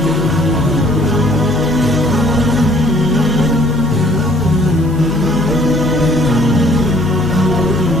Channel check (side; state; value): right; noise; hum, 16 dB below the sound